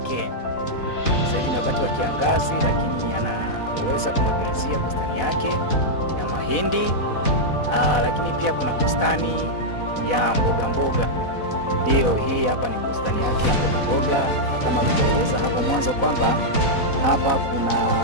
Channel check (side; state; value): right; late; 4.1 ms